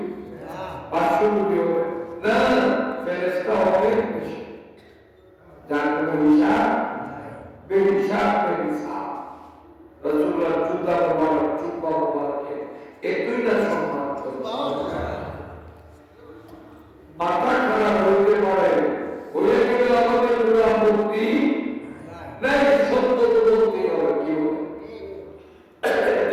500 কোটি হবে না, ফেরেশতা হবে বেশি, যার কোনো হিসাব বেহিসাব বেহিসাব। রাসূলুল্লাহ জুতা মুবারক জুব্বা মুবারকে এই দুইটা সম্মান মাথা খারাপ হইতে পারে, হয়ে গেলে আমাদের কোনো আপত্তি নাই, সত্য তো বলতেই হবে। কি হবে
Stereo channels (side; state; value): both; identical; correlation 1.00